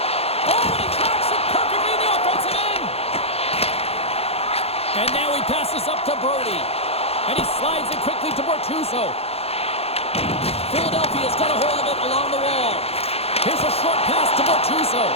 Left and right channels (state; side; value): late; right; 0.29 ms